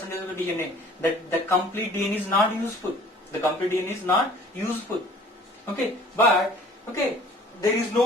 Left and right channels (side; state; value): both; normal; correlation 0.51